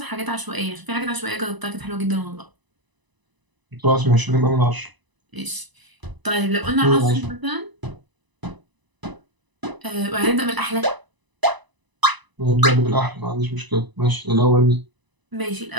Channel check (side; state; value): left; late; 1.0 ms